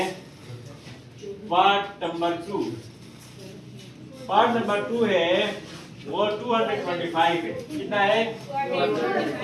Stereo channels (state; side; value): identical; both; correlation 1.00